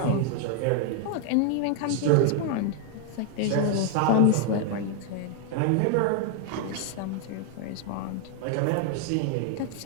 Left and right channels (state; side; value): different; both; correlation 0.00